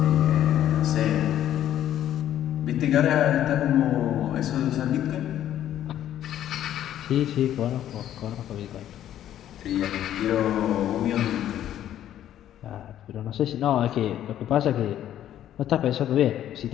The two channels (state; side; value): quieter; right; 11.5 dB